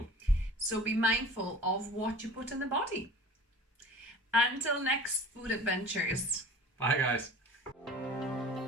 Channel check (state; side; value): normal; both; correlation 0.42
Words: So be mindful of what you put in the body. Until next food adventures. Bye, guys.